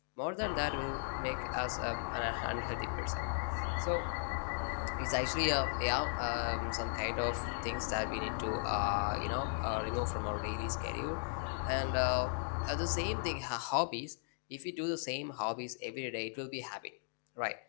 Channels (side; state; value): right; silent; digital silence